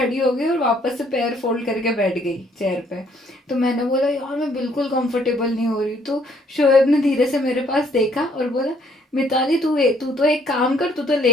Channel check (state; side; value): normal; both; correlation 0.64